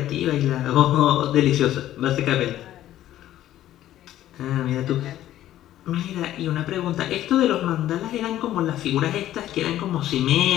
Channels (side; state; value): right; quieter; 13.1 dB